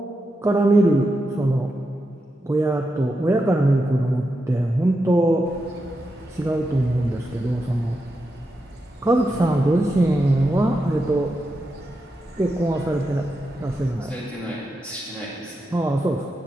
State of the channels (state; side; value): normal; both; correlation 0.87